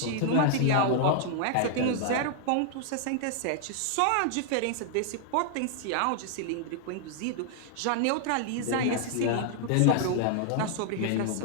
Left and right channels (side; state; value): both; different; correlation 0.00